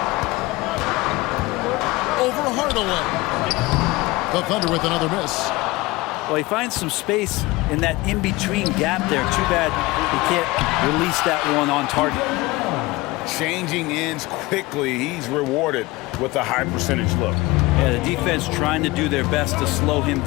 Over Hardaway. The Thunder with another miss. Well, he finds some space in that in-between gap there. Too bad he can't release that one on target. Changing ends quickly. He's rewarded with a high percentage look. Yeah, the defense trying to do their best to slow him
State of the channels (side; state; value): right; quieter; 21.1 dB